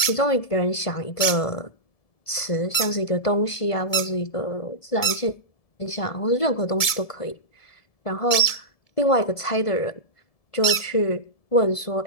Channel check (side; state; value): right; late; 1.7 ms